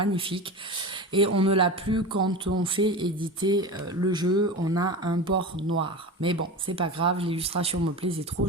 Et on ne l'a plus quand on fait éditer le jeu. On a un bord noir. Mais bon, c'est pas grave, l'illustration me plaisait trop.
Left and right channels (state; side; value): normal; both; correlation 0.28